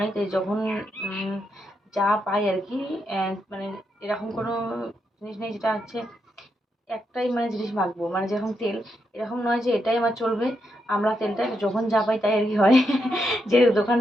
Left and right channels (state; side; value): normal; both; correlation 0.82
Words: তাই যখন যা পাই আর কি, এরকম কোনো জিনিস নেই যেটা হচ্ছে একটাই জিনিস মাখবো, যেরকম তেল, এরকম নয় যে এটাই আমার চলবে। আমরা তেলটা যখন যা পাই তাই আর কি হয়। যেহেতু দোকান